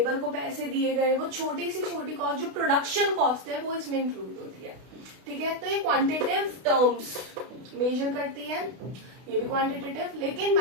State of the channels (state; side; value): late; left; 32 ms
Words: को पैसे दिए गए, वो छोटी से छोटी कॉस्ट जो प्रोडक्शन कॉस्ट है वो इसमें इंक्लूड होती है, ठीक है। तो ये क्वांटिटेटिव टर्म्स मेजर करती है, ये भी क्वांटिटेटिव, लेकिन